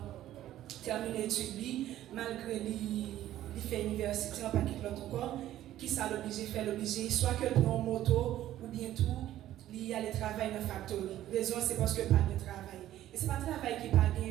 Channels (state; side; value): quieter; left; 13.2 dB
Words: terminent l'étude, malgré les fait l'université, on ne pas quitter l'autre corps, qui ça l'oblige, soit que prend une moto ou bien tout, il y a le travail dans la factory. La raison c'est parce que pas de travail. Et ce n'est pas le travail qui n'est pas